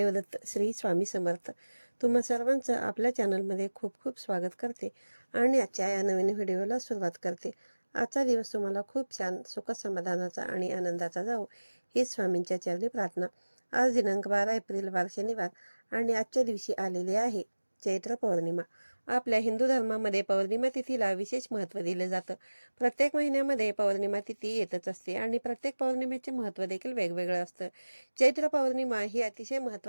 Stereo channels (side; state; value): both; inverted; correlation -1.00